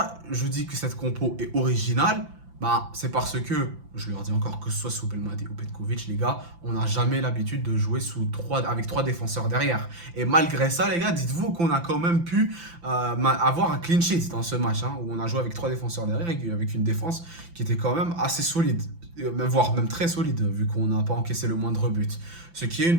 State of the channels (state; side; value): late; left; 5.9 ms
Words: je dis que cette compo est originale? Bah, c'est parce que, je leur dis encore, que ce soit sous Belmadi ou Petkovic, les gars, on n'a jamais l'habitude de jouer avec trois défenseurs derrière. Et malgré ça, les gars, dites-vous qu'on a quand même pu avoir un clean sheet dans ce match, hein, où on a joué avec trois défenseurs derrière et avec une défense qui était quand même assez solide, voire même très solide, vu qu'on n'a pas encaissé le moindre but. Ce qui est une